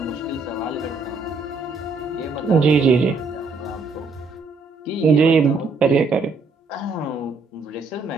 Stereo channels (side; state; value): left; quieter; 3.9 dB